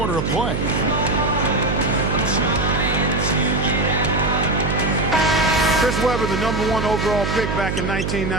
of play. Chris Webber, the #1 overall pick back in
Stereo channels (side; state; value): right; noise; hum, 2 dB below the sound